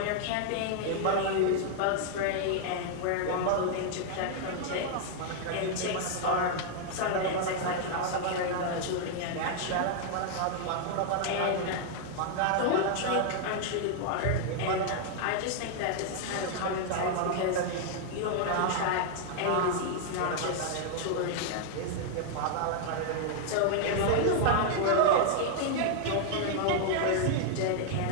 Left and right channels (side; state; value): both; different; correlation 0.00